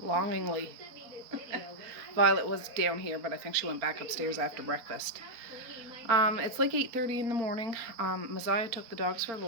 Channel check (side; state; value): left; late; 4.3 ms